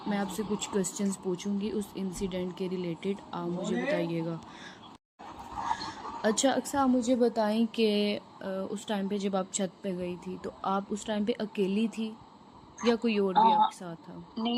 मैं आपसे कुछ क्वेश्चंस पूछूंगी उस इंसिडेंट के रिलेटेड, आप मुझे बताइएगा। अच्छा अक्सर, आप मुझे बताएं कि उस टाइम पे जब आप छत पे गई थी तो आप उस टाइम पे अकेली थी या कोई और भी हाँ, आपके साथ था?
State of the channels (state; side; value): identical; both; correlation 1.00